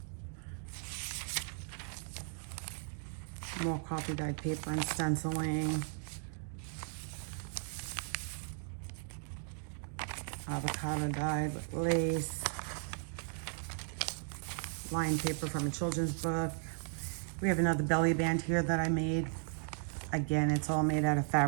More coffee dyed paper and stenciling. Avocado dyed with lace. Lined paper from a children's book. We have another belly band here that I made. Again, it's all made out of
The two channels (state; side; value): silent; left; 54 dB below the other